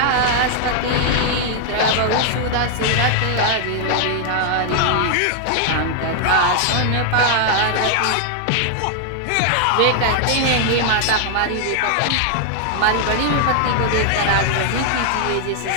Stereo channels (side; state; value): both; different; correlation 0.00